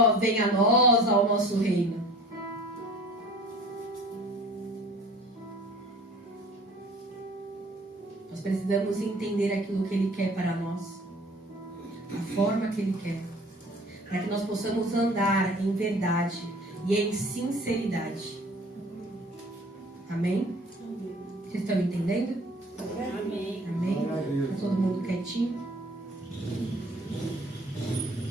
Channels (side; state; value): both; normal; correlation 0.48